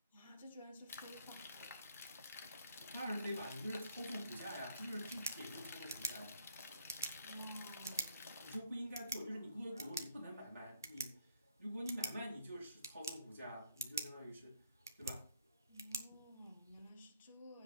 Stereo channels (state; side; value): inverted; both; correlation -0.65